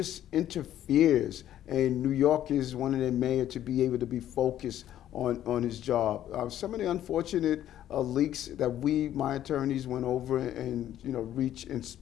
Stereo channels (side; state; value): right; quieter; 11.8 dB